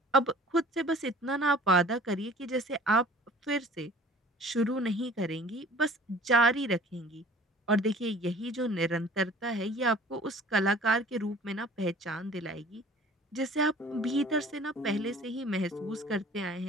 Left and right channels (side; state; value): both; normal; correlation 0.48